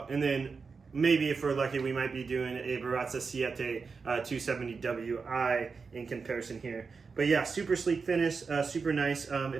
And then maybe if we're lucky, we might be doing a Baratza Siete 270WI in comparison here. But yeah, super sleek finish, super nice.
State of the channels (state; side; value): quieter; left; 5.0 dB